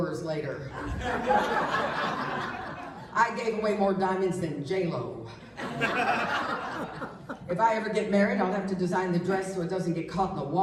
later. I gave away more diamonds than J-Lo. If I ever get married, I'll have to design the dress so it doesn't get caught in the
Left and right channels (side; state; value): both; identical; correlation 1.00